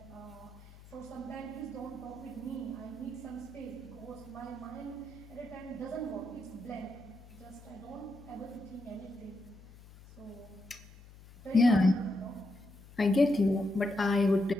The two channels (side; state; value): left; noise; hum, 20 dB below the sound